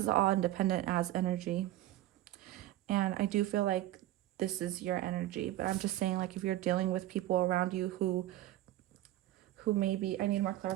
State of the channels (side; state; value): left; quieter; 14.8 dB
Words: all independent as energy. And I do feel like this is your energy, but I'm just saying, like, if you're dealing with people around you who maybe, I need more